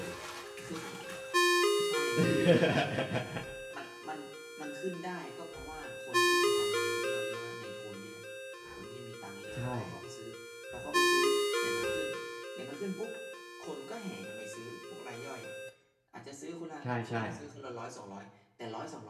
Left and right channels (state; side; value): identical; both; correlation 1.00